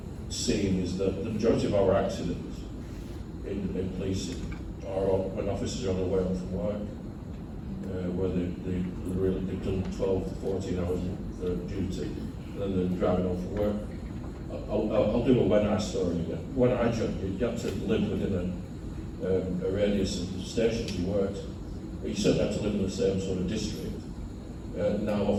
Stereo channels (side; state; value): both; identical; correlation 1.00